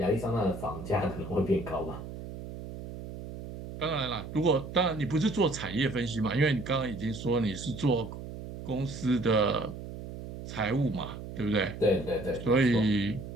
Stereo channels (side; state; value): right; noise; hum, 10 dB below the sound